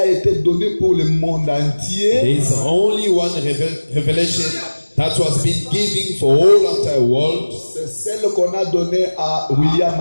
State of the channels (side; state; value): both; inverted; correlation -1.00